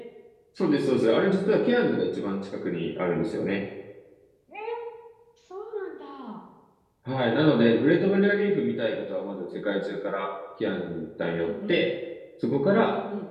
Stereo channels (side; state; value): both; identical; correlation 1.00